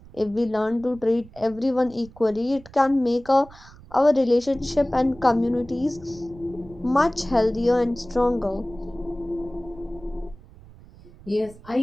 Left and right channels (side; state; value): right; noise; rumble, 21 dB below the sound